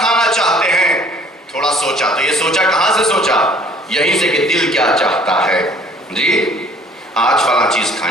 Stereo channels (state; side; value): normal; both; correlation 0.55